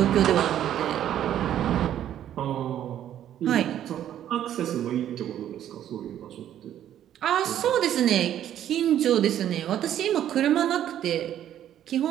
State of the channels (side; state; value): left; quieter; 11.0 dB